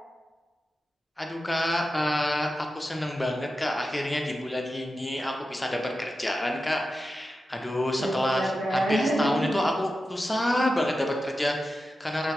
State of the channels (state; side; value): normal; both; correlation 0.91